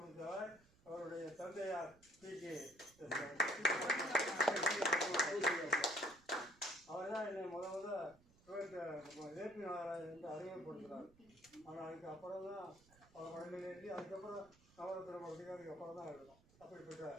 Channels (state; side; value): noise; right; rumble, 28 dB below the sound